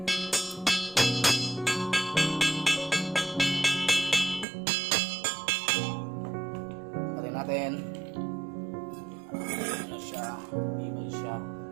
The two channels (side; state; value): left; drops out; at 4.5 s